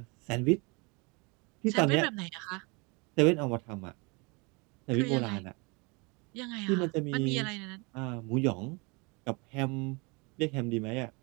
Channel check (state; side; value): quieter; left; 29.4 dB